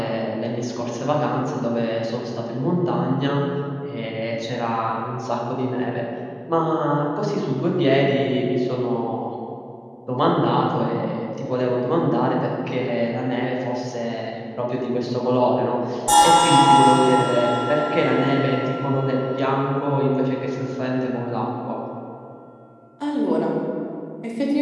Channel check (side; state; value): both; identical; correlation 1.00